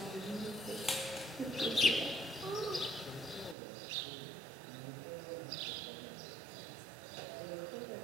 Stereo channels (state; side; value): drops out; left; at 3.6 s